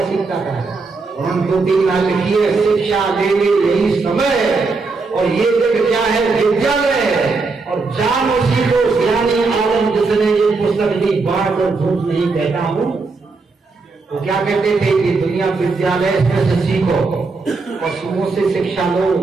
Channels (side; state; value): left; quieter; 4.1 dB